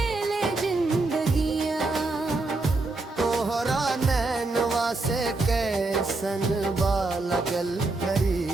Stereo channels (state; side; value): quieter; left; 3.3 dB